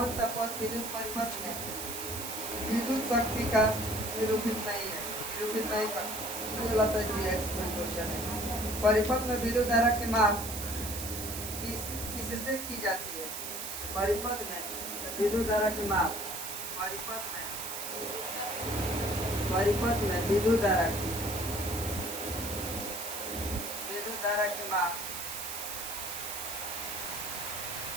सा पद विद्युत परिपथ में विद्युत शक्ति का निरूपित नहीं कर गलत है क्वेश्चन है। परिपथ में विद्युत धारा की माप किससे की जाती है? परिपथ में विद्युत धारा की माप परिपथ में विद्युत धारा की माप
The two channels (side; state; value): right; noise; hiss, 6 dB below the sound